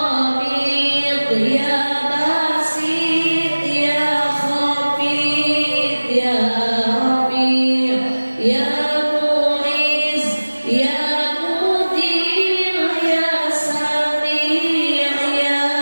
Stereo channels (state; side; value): inverted; both; correlation -1.00